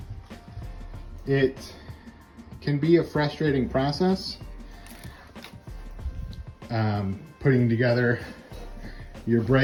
It can be a frustrating process, putting together your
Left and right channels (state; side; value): identical; both; correlation 1.00